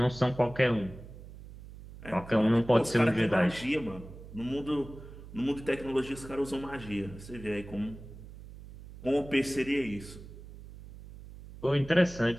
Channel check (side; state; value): right; noise; hum, 16 dB below the sound